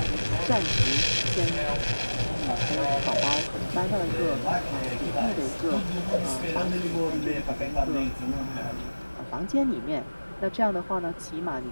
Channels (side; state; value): both; inverted; correlation -1.00